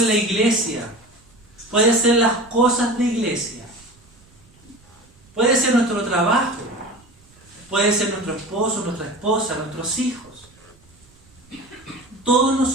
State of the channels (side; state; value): right; noise; rumble, 29 dB below the sound